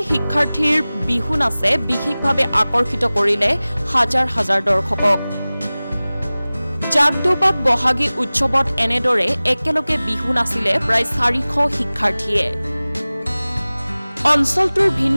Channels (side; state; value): both; inverted; correlation -0.99